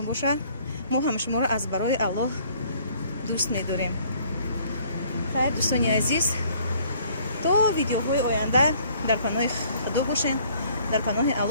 باشه ما هم شما را از برای الله دوست می‌داریم خیلی دوستانی عزیز تا ویدیوهای آینده در کانال خدا باشین در کانال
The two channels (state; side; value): inverted; both; correlation -0.59